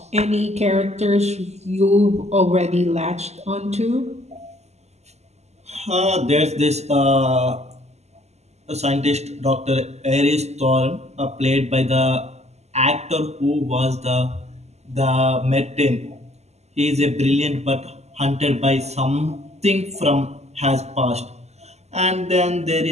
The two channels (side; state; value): left; late; 0.32 ms